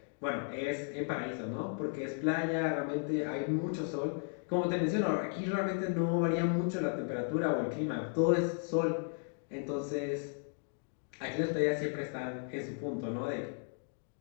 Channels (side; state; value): right; silent; 54 dB below the other